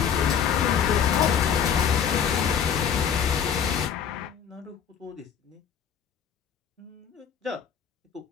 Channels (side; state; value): right; quieter; 7.7 dB